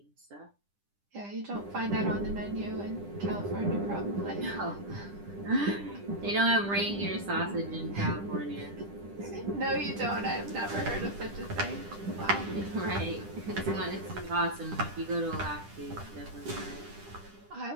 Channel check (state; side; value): late; left; 10 ms